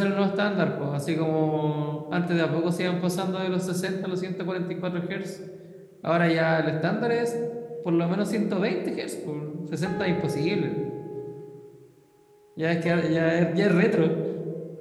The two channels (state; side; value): identical; both; correlation 1.00